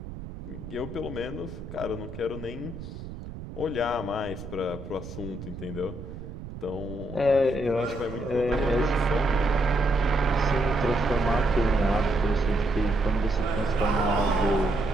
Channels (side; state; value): right; noise; rumble, 11 dB below the sound